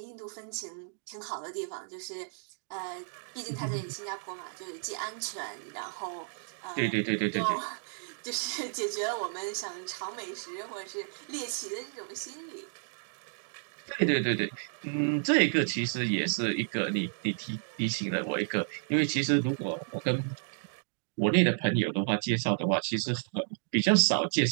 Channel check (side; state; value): left; silent; digital silence